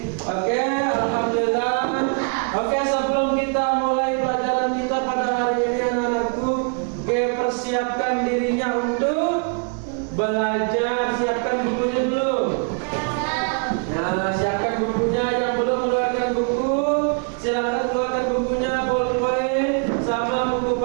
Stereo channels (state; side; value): quieter; left; 39.6 dB